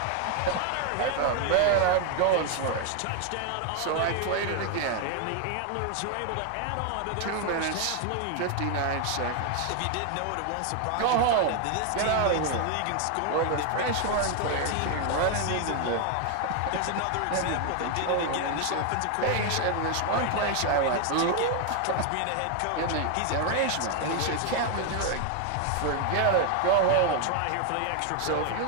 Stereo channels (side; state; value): both; different; correlation 0.01